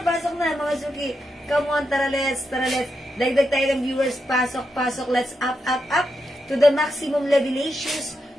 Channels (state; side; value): normal; both; correlation 0.85